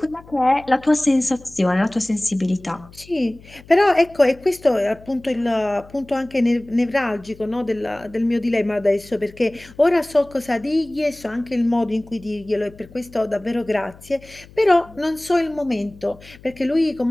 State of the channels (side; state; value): left; noise; hum, 22 dB below the sound